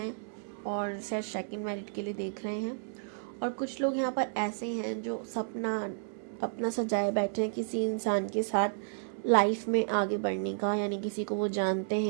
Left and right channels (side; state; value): left; silent; digital silence